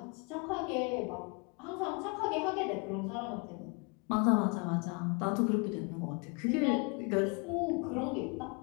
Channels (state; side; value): quieter; right; 32.2 dB